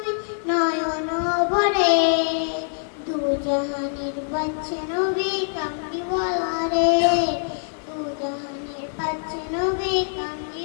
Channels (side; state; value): right; silent; 63 dB below the other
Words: নয়ন ভরে, দু জাহানের বাদশা নবী কামলিওয়ালা রে, দু জাহানের বাদশা নবী